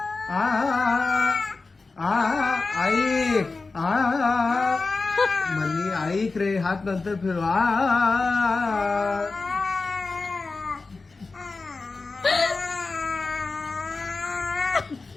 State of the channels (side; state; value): right; quieter; 3.9 dB